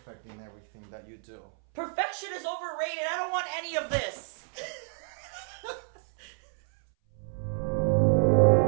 in everything that you do. Perfection is overrated. I don't want any of this.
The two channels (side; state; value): left; silent; 58 dB below the other